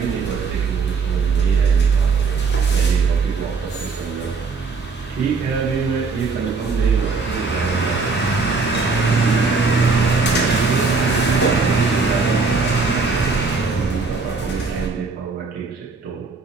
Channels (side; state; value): left; quieter; 4.5 dB